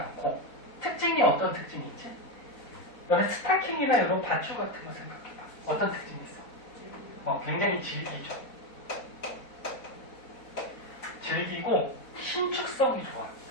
특징이 어떤 특징이 있지? 너네 스타킹이나 이런 밧줄 같은 거 생각해봐. 어떤 특징이 있어? 굉장히 질기죠. 질기고 신축성이 좋아.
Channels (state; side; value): late; right; 4.0 ms